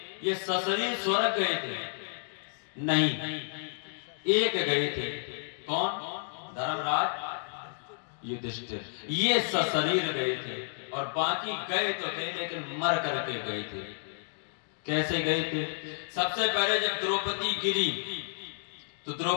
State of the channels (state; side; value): silent; right; digital silence